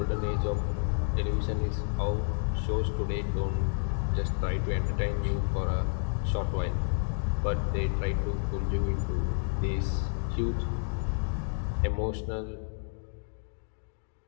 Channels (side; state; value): right; silent; digital silence